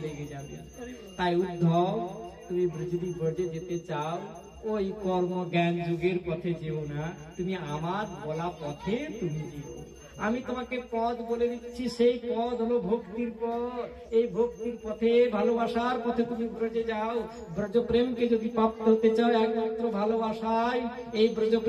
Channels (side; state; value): both; identical; correlation 1.00